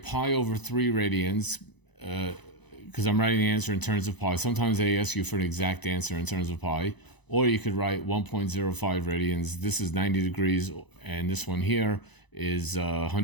over 3 radians because I'm writing the answer in terms of pi. Sometimes they ask you for an exact answer in terms of pi. Or you could write 1.05 radians. This is 90 degrees, and this one here is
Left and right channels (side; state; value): right; late; 1.0 ms